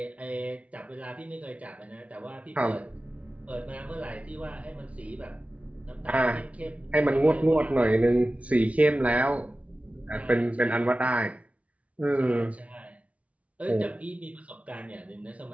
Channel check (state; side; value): late; left; 0.066 ms